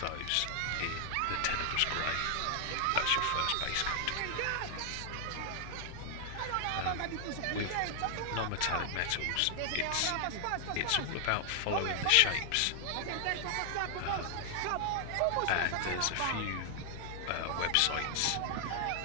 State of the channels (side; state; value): both; different; correlation 0.00